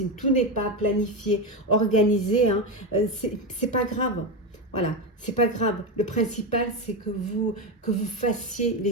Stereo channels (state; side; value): normal; both; correlation 0.14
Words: tout n'est pas planifié, organisé, hein, c'est pas grave. Voilà, c'est pas grave. Le principal, c'est que vous fassiez